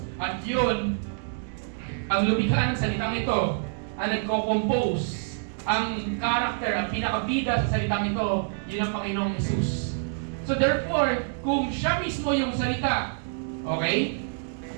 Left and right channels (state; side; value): silent; left; digital silence